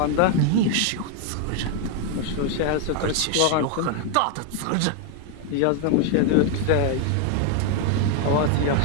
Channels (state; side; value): different; both; correlation 0.01